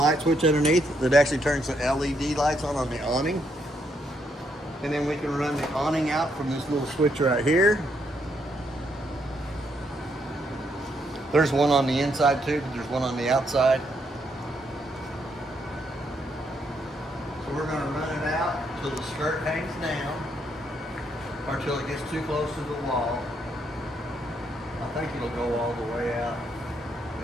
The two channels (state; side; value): normal; both; correlation 0.75